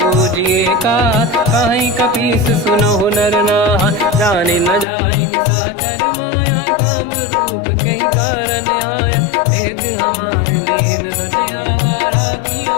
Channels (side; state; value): right; drops out; at 4.9 s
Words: पूजिए का, कहीं कपीस सुनहु नर नाहा। जाने न जाए साचर माया, काम रूप कई कारण आया। भेद हमार लेन सटियावा, राखी